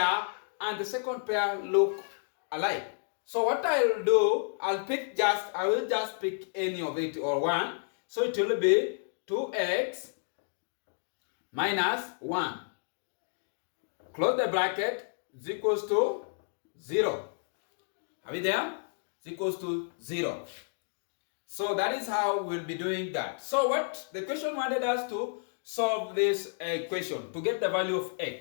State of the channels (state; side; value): silent; right; digital silence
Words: and the second pair look alike, so what I'll do, I will just pick any of it or one. So it will be 2x minus 1. Close the bracket, is equals to 0. Are we there? Is equals to 0. So that is how we'll be doing that. So what the question wanted us to solve this equation to get the value of